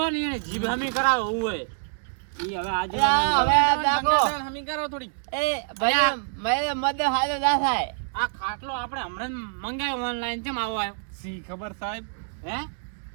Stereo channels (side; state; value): left; silent; digital silence